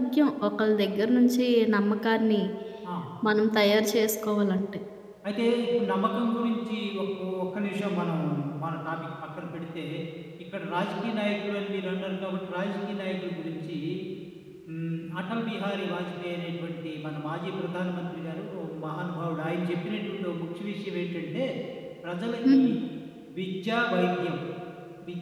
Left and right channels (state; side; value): identical; both; correlation 1.00